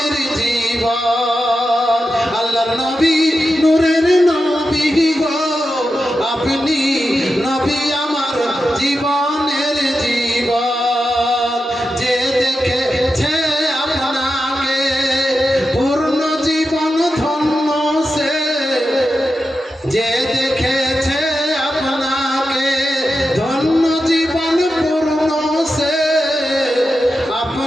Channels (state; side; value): normal; both; correlation 0.90